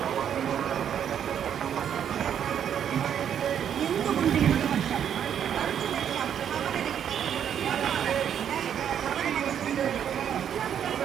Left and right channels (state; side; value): quieter; left; 9.0 dB